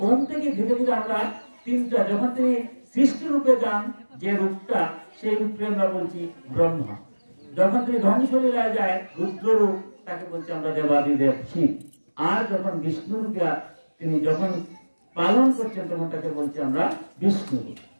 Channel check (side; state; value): both; inverted; correlation -1.00